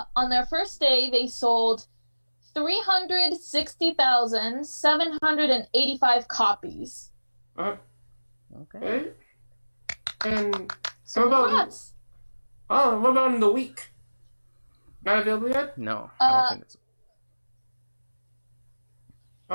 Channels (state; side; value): inverted; both; correlation -1.00